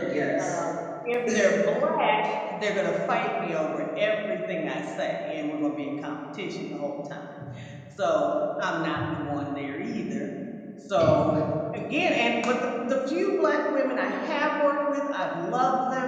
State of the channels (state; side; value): identical; both; correlation 1.00